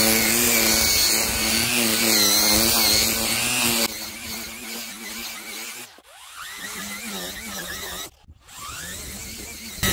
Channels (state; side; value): identical; both; correlation 1.00